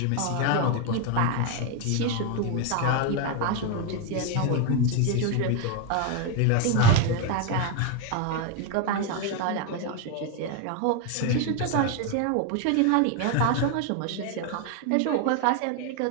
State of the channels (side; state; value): both; different; correlation 0.01